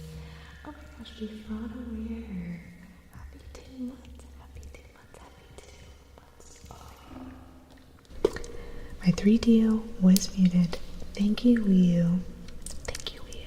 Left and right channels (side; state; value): both; identical; correlation 1.00